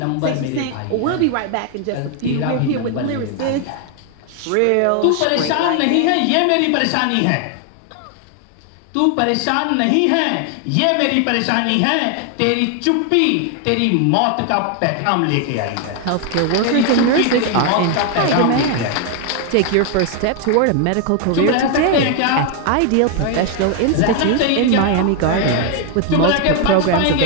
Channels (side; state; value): both; different; correlation 0.00